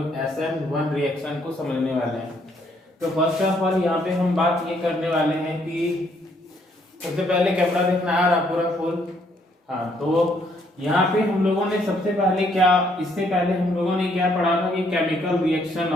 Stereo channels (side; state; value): both; normal; correlation 0.69